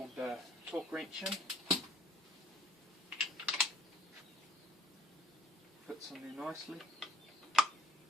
torque wrench in. Fits in there nicely,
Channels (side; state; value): both; normal; correlation 0.59